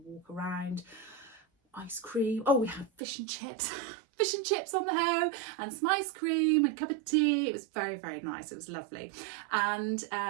around, ice cream. Oh, we had fish and chips. Fish and chips on the home, and some ice cream and a cup of tea. It was very, very nice. It was lovely. And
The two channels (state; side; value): drops out; left; at 3.0 s